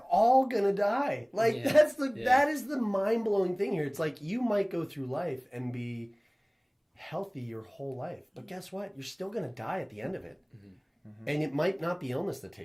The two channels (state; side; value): identical; both; correlation 1.00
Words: all gonna die. Like Yeah. that is the mind-blowing thing here. It's like you might go through life and be healthy your whole life, but guess what? You're still gonna die at the end of it. And it might not be illness that